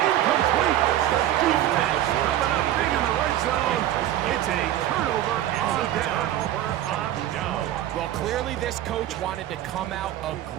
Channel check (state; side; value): quieter; left; 12.7 dB